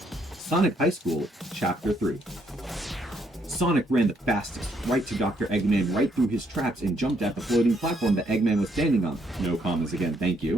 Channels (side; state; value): both; normal; correlation 0.72